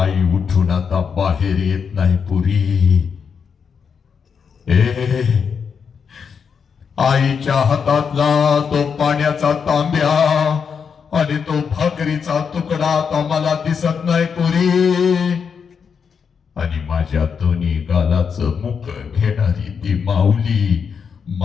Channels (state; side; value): quieter; right; 6.4 dB